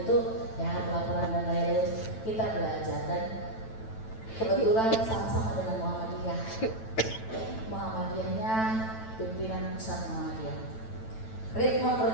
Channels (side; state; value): right; late; 9.1 ms